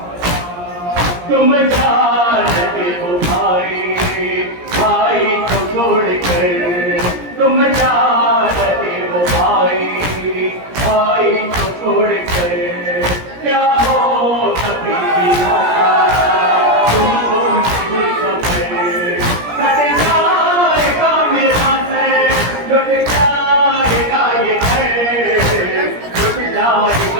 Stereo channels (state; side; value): late; left; 17 ms